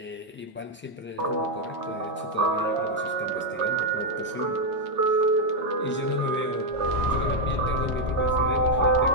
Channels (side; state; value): both; normal; correlation 0.01